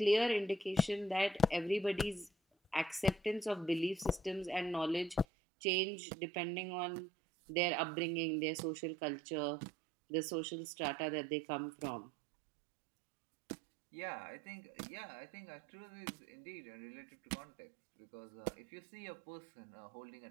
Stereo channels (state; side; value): drops out; left; at 5.2 s